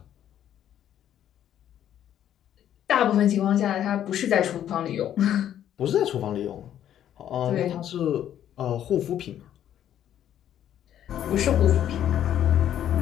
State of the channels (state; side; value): quieter; right; 10.8 dB